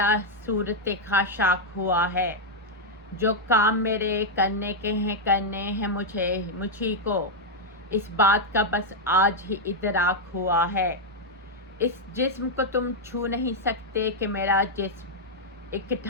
सूरत खाशाक हुआ है। जो काम मेरे करने के हैं करने हैं मुझी को, इस बात का बस आज ही इदराक हुआ है। इस जिस्म को तुम छू नहीं सकते कि मेरा जिस्म एक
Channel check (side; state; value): both; normal; correlation -0.02